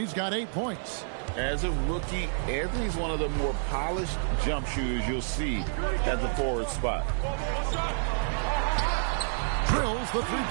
got 8 points. As a rookie, Anthony's one of the more polished jump shooters you'll see at the forward spot. Drills the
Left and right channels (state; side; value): silent; left; digital silence